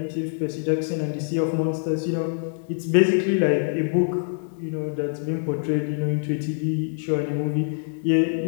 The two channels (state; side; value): silent; right; digital silence